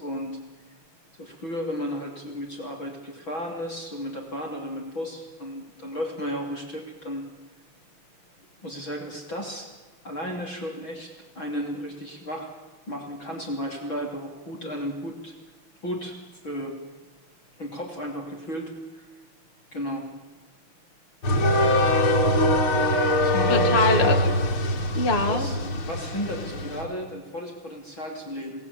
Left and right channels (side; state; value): right; late; 6.2 ms